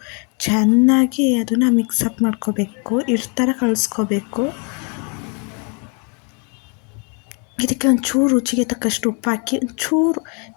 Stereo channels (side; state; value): right; quieter; 36.0 dB